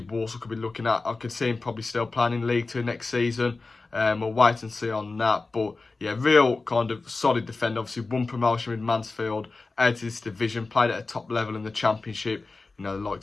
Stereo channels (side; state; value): right; quieter; 3.7 dB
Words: could be looking at. I could see him probably still playing in League Two next season. We'll wait and see on that. But yeah, real kind of solid defender. Obviously, won promotion with Mansfield out of this division. Played at a top level in the Championship. The